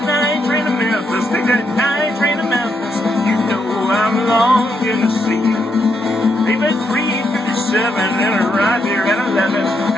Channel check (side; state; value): both; normal; correlation 0.79